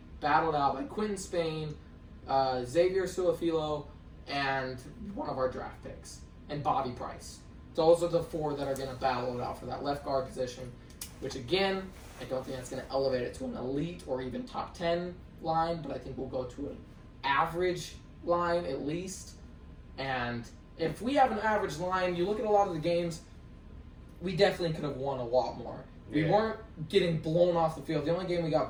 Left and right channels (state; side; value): identical; both; correlation 1.00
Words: battled out by Quentin Spain, Xavier Suafilo, and one of our draft picks, and Bobby Price. Those are the 4 that are going to battle it out for that left guard position, which again, I don't think that's going to elevate it to an elite or even top 10 line, but I think we'll go to an average line at least. And if we have an average line, you look at a lot of the games, we definitely could have won a lot more. We weren't getting blown off the field. The only game we got